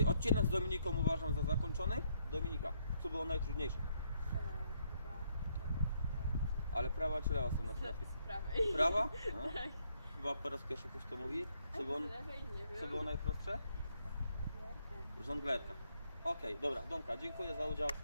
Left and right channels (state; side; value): inverted; both; correlation -0.73